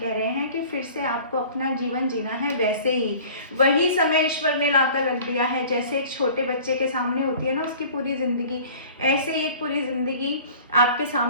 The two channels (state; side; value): inverted; both; correlation -0.45